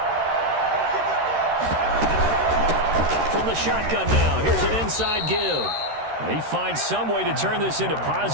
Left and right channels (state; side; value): late; left; 13 ms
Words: From the shotgun now, here's an inside give. He finds some way to turn this into